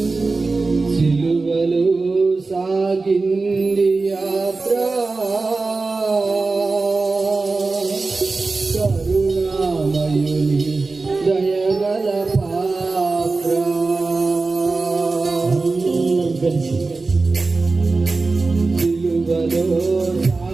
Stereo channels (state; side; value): quieter; left; 3.8 dB